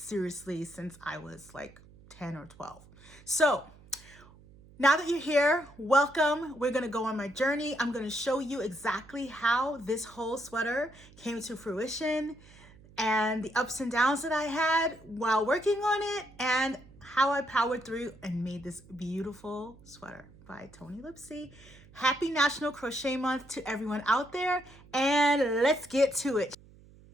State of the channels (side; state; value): right; noise; hum, 23 dB below the sound